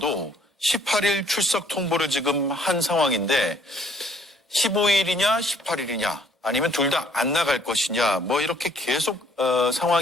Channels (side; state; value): both; normal; correlation 0.62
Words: 18일 출석 통보를 지금 한 상황인데 15일이냐 18일이냐 아니면 둘 다 안 나갈 것이냐 뭐 이렇게 계속